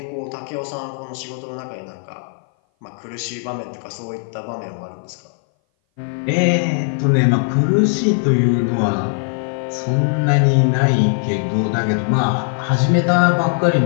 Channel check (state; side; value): silent; right; 58 dB below the other